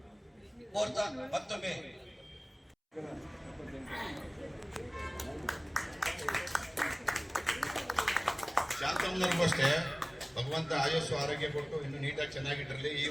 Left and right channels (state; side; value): identical; both; correlation 1.00